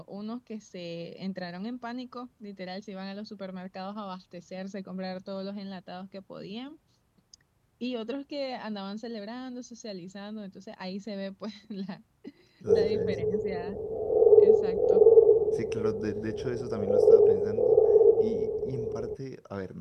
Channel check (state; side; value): identical; both; correlation 1.00